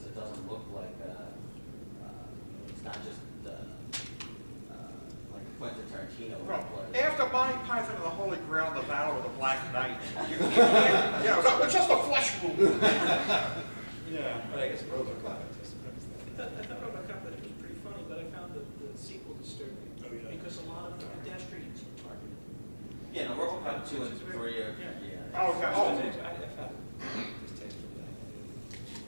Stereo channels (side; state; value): both; inverted; correlation -1.00